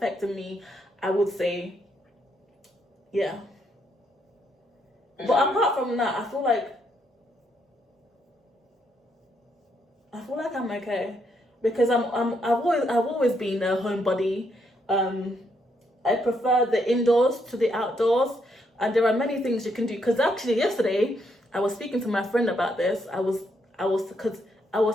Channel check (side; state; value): both; normal; correlation 0.75